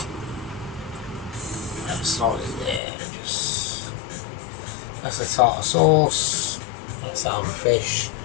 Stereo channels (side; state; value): right; drops out; at 2.8 s